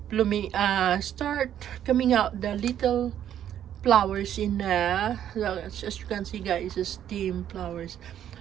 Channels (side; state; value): left; quieter; 10.4 dB